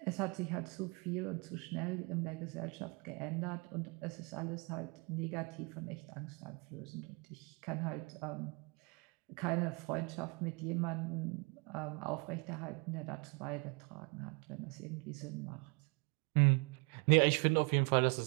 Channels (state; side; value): quieter; left; 31.6 dB